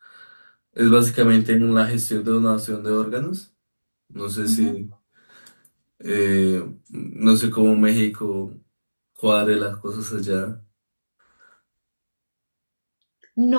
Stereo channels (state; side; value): inverted; both; correlation -1.00